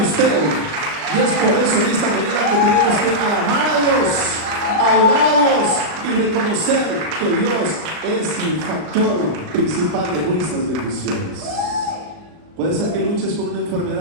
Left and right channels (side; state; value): left; late; 38 ms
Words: usted. Y es por eso en esta manera que tenemos que alabar a Dios, adorarlos y reconocer que Dios es el factor principal de nuestras bendiciones. Puede ser que luches con una